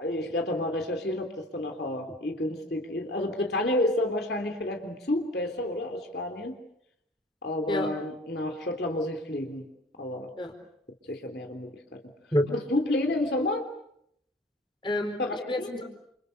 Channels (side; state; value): both; normal; correlation 0.47